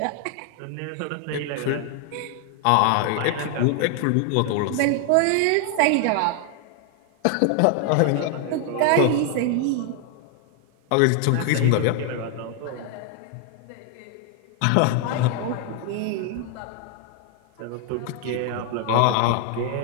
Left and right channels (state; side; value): different; both; correlation 0.00